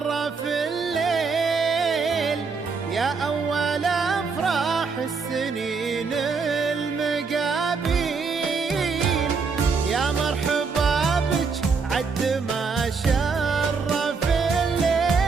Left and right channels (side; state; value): left; quieter; 4.9 dB